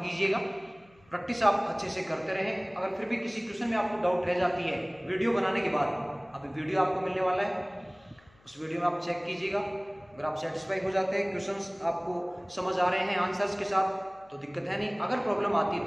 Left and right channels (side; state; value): left; noise; hum, 30 dB below the sound